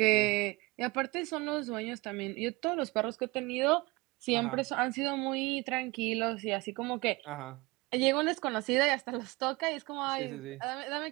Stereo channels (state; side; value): quieter; left; 23.8 dB